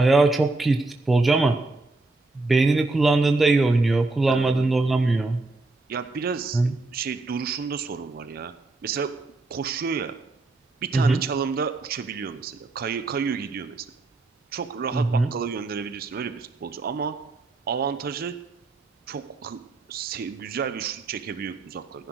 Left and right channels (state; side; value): quieter; left; 3.2 dB